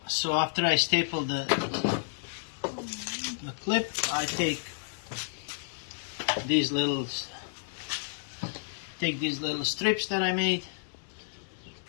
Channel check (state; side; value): silent; right; digital silence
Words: so after I staple the clip, I take these little strips that I made